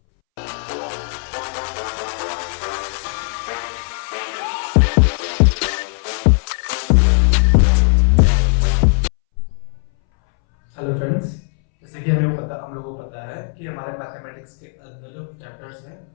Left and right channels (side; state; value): right; silent; 65 dB below the other